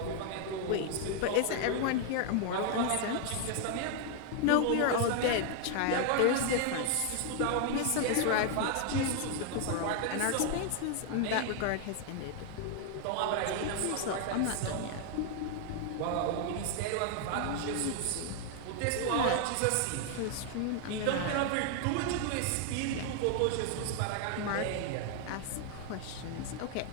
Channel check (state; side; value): different; both; correlation 0.00